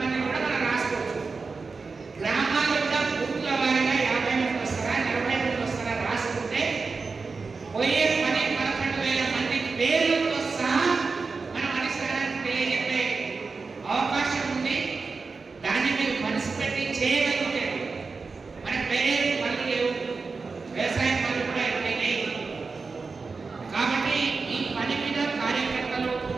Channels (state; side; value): quieter; left; 4.4 dB